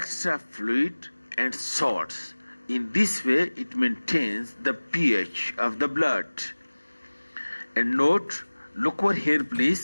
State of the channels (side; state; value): both; inverted; correlation -1.00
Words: fluid, and salts. In this way, it maintains the pH of the blood. And note, look over here,